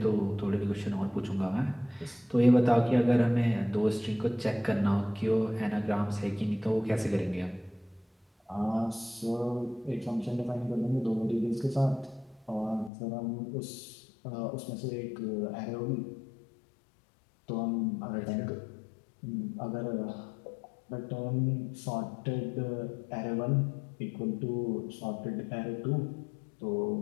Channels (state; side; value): drops out; right; at 12.9 s